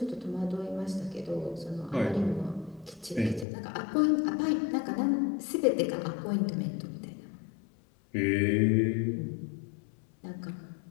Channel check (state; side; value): drops out; right; at 3.5 s